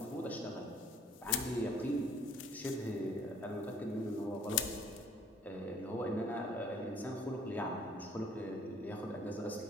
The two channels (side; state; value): both; normal; correlation 0.58